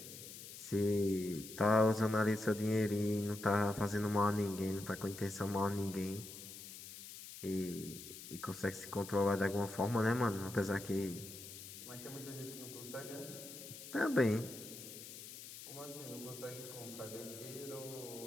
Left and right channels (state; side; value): noise; left; hiss, 12 dB below the sound